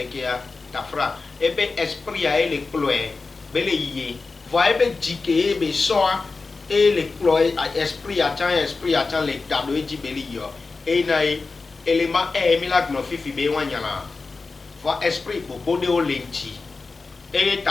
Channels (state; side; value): quieter; right; 4.1 dB